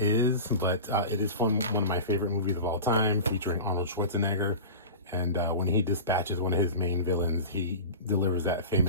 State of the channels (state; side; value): inverted; both; correlation -0.31